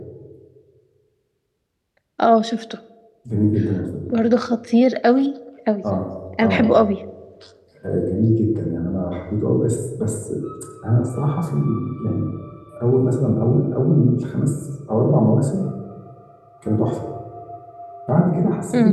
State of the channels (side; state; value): both; identical; correlation 1.00